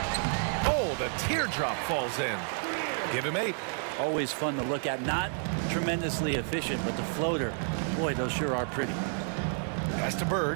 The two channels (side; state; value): left; silent; 58 dB below the other